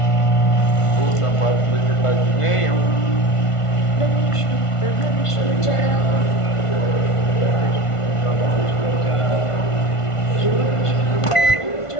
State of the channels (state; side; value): late; right; 1.5 ms